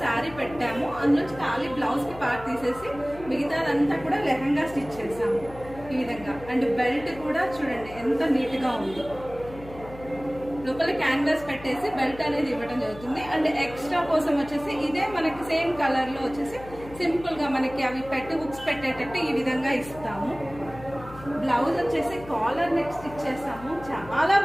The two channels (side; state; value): left; noise; hum, 16 dB below the sound